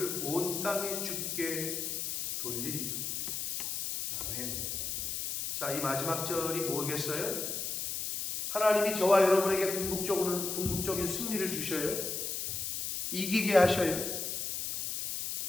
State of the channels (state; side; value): noise; left; hiss, 3 dB below the sound